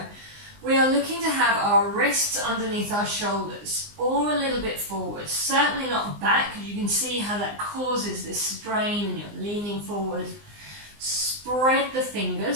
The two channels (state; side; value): late; left; 19 ms